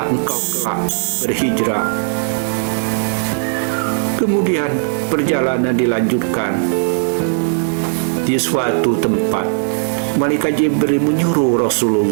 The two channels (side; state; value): left; silent; 64 dB below the other